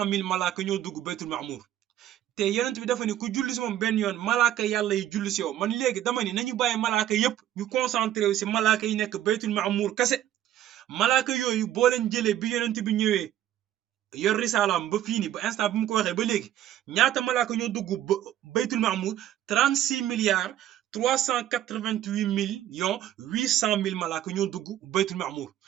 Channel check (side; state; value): left; quieter; 12.1 dB